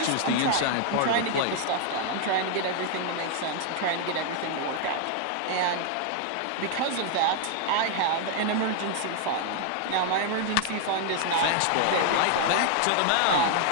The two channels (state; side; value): different; both; correlation 0.00